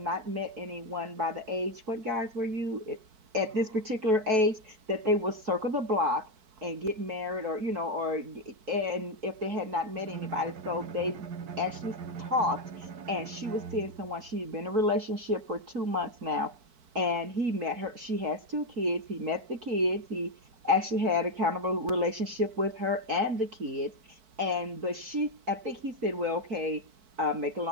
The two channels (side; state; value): left; late; 4.6 ms